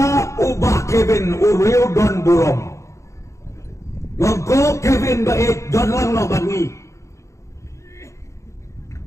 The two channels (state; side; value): late; right; 0.14 ms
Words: ubah Kevin Uriu Don Burong ngoko Kevin baik Don lang no bangi